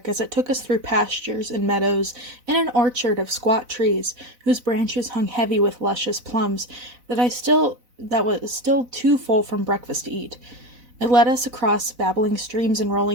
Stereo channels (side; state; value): left; late; 4.0 ms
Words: as it took us through pastures and meadows and an orchard of squat trees, whose branches hung heavy with luscious plums that was still too full from breakfast to eat. It led us across babbling streams and